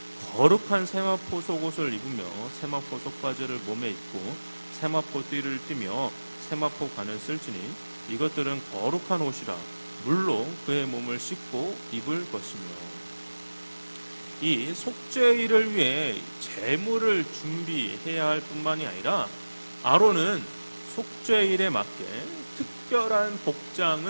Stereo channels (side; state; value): both; inverted; correlation -1.00